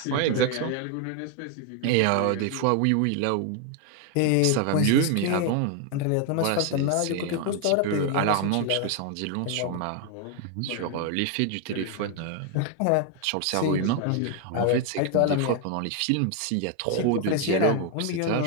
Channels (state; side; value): different; both; correlation 0.01